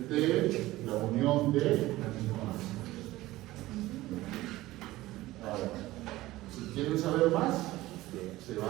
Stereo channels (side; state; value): left; quieter; 17.4 dB